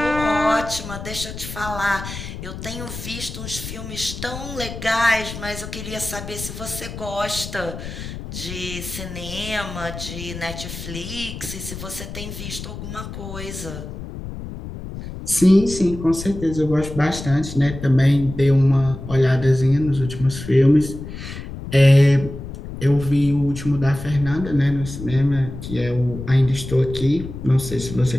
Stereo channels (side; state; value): left; noise; rumble, 10 dB below the sound